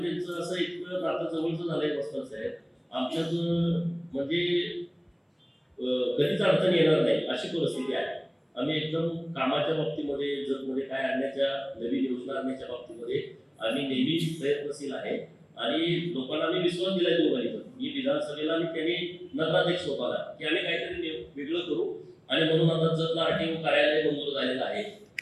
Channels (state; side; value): identical; both; correlation 1.00